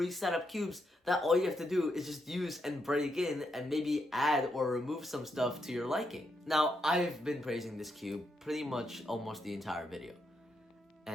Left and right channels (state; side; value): normal; both; correlation 0.81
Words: up cubes that all you have to do is just use and break in and maybe add or remove some stuff to your liking. Now, I've been praising this cube pretty much almost the entire video.